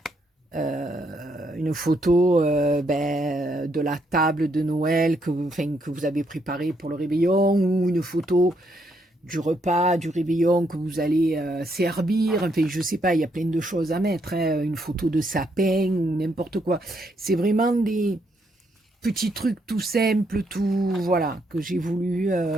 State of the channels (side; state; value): both; normal; correlation 0.75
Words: une photo de la table de Noël que vous avez préparée pour le réveillon, ou une photo du repas, du réveillon que vous allez servir. Enfin, je sais pas, il y a plein de choses à mettre, hein, une photo de sapin ou n'importe quoi. C'est vraiment des petits trucs tout simples, tout, voilà, que j'ai voulu